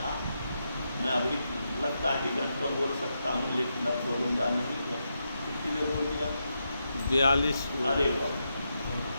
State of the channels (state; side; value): inverted; both; correlation -0.85